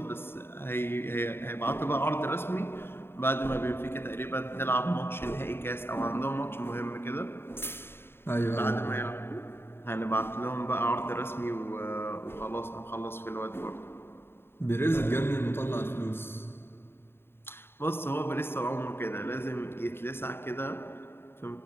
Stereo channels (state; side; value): late; right; 0.11 ms